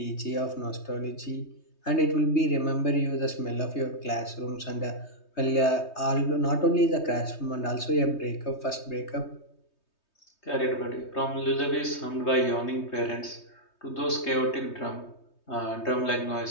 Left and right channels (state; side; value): late; right; 3.2 ms